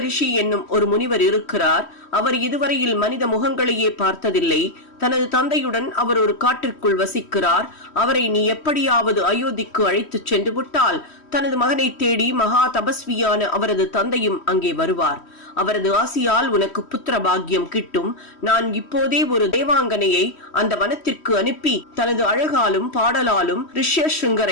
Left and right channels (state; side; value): late; right; 3.1 ms